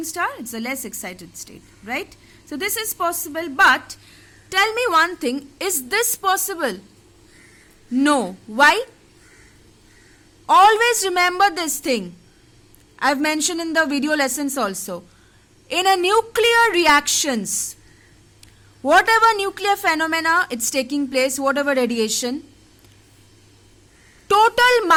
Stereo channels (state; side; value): identical; both; correlation 1.00